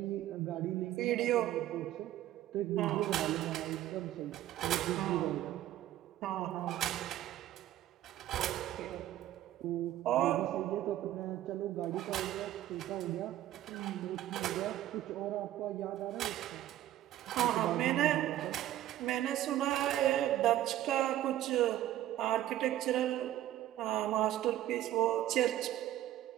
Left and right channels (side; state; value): left; quieter; 13.3 dB